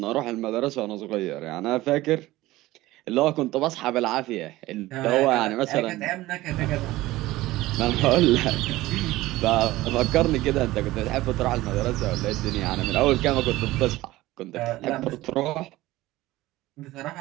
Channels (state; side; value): quieter; left; 17.6 dB